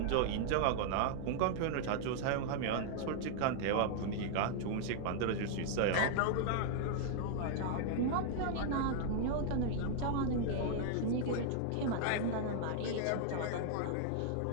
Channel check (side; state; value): both; different; correlation 0.00